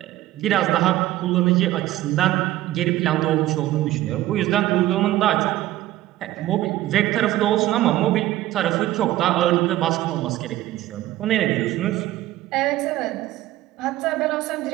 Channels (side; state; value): left; quieter; 15.1 dB